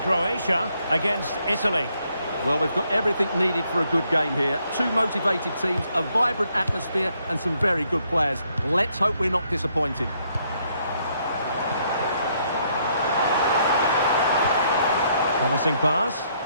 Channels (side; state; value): both; inverted; correlation -0.72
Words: against Italy. Well, we've got everything needed for a good game here. Two motivated teams, a vibrant atmosphere, and some very good players. Let's hope we're not disappointed. Promising pass.